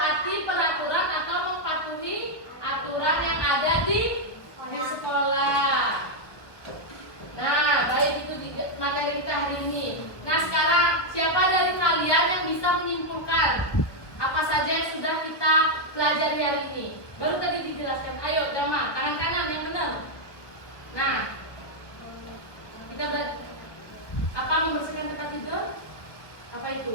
pelajari hari ini. Baru tadi dijelaskan. Ayo, Dama, tangan kanan yang benar. Nah, kita belajar apa membersihkan tempat tidur? Apa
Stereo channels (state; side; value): late; right; 1.3 ms